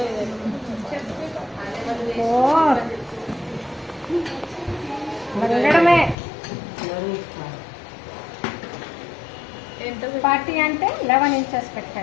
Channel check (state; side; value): drops out; right; at 6.2 s